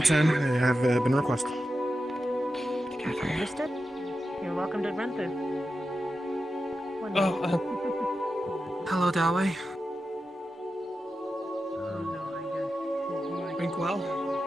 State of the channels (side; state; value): both; normal; correlation 0.90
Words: I have been requested. Understood. You're welcome to run through. Oh, hello, Dawei. Drink well.